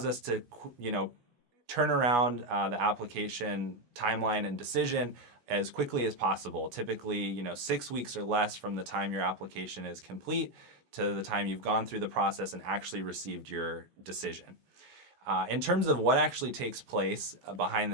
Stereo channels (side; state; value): left; late; 17 ms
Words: us to, turn around the application timeline and decision as quickly as possible. Typically, 6 weeks or less from the time your application is complete to the time you've gone through the process and actually received your decision. In terms of what actually takes place behind